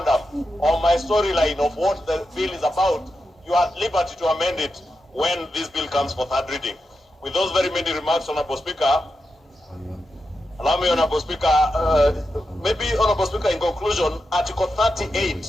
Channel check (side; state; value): both; normal; correlation 0.88